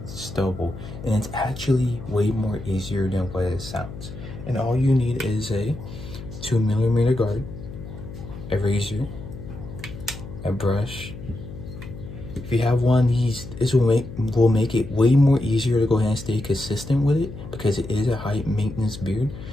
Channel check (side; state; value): left; noise; hum, 12 dB below the sound